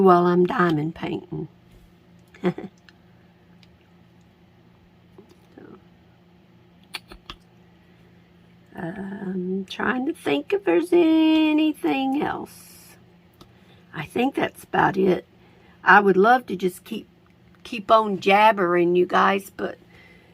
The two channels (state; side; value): identical; both; correlation 1.00